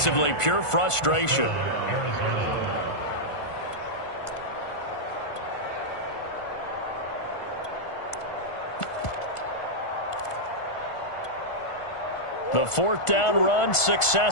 pure frustration. The fourth down run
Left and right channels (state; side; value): late; right; 1.5 ms